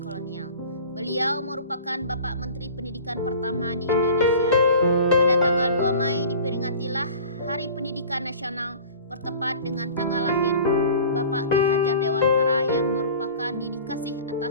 Beliau merupakan Bapak Menteri Pendidikan pertama di Indonesia. Pada tanggal 2 Mei diperingatilah Hari Pendidikan Nasional bertepat dengan tanggal lahir Bapak Ki Hajar Dewantara yang merupakan dedikasi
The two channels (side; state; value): both; inverted; correlation -0.42